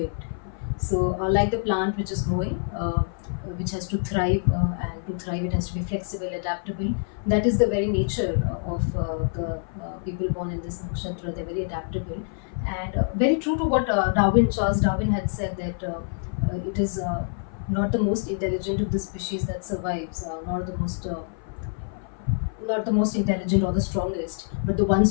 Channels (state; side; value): silent; right; 56 dB below the other